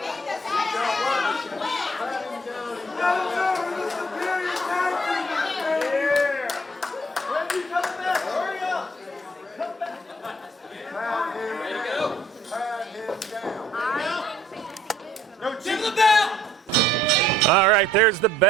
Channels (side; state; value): both; normal; correlation 0.61